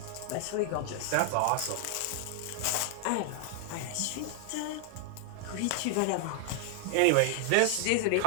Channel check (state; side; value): different; both; correlation 0.00